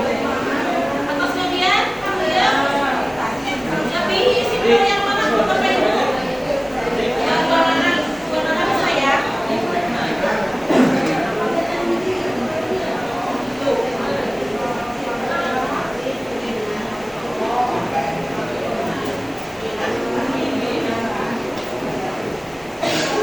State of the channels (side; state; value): left; noise; hiss, 26 dB below the sound